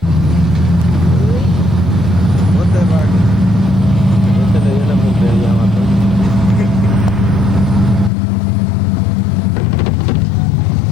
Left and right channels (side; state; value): right; drops out; at 8.1 s